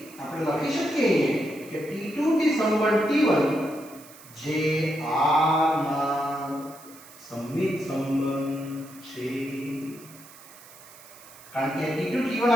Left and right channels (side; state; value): right; noise; hiss, 21 dB below the sound